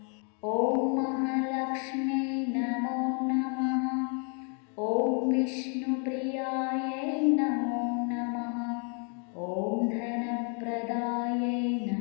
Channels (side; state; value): right; quieter; 39.9 dB